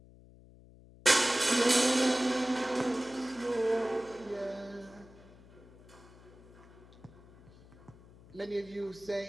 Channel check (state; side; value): noise; left; hum, 23 dB below the sound